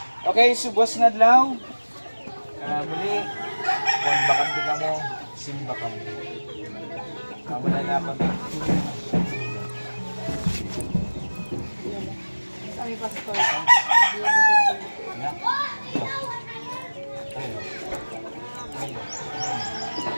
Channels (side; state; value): both; inverted; correlation -1.00